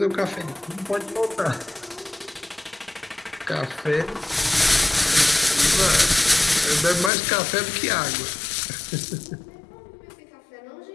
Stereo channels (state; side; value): drops out; right; at 7.1 s